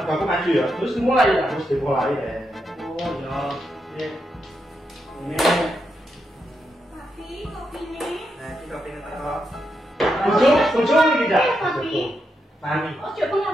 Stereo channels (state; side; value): normal; both; correlation 0.83